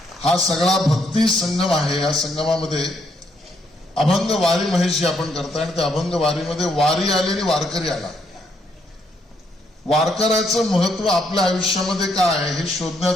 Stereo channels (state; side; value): normal; both; correlation 0.74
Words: हा सगळा भक्ती संगम आहे. या संगमामध्ये अभंग वारी महेशजी आपण करताय आणि त्या अभंग वारीमध्ये वारी आली आणि वारकरी आला. वारकऱ्याचं महत्व आपल्या आयुष्यामध्ये काय आहे हे